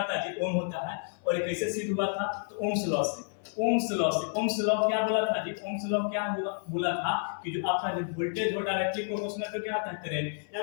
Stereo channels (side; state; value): right; silent; 58 dB below the other